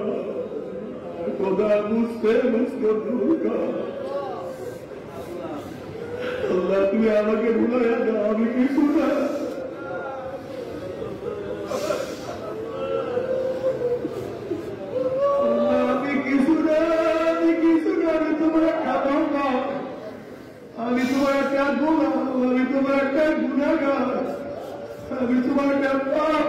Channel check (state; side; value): identical; both; correlation 1.00